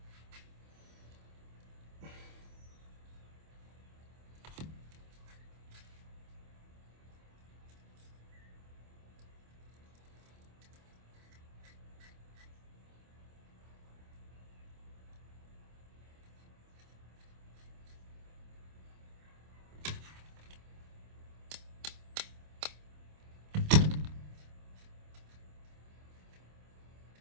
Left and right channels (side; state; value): left; late; 26 ms